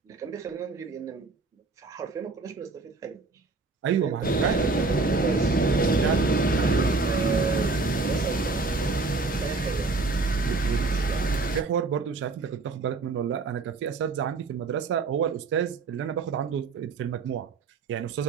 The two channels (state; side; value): quieter; left; 3.8 dB